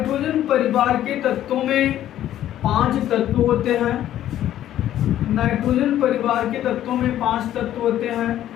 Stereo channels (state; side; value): quieter; right; 12.2 dB